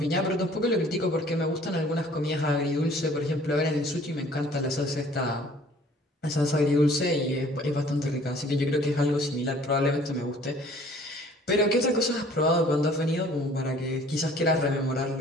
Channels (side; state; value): both; normal; correlation 0.53